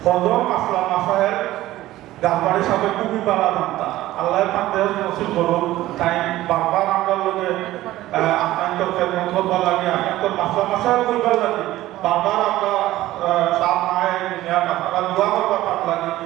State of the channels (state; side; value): quieter; left; 15.7 dB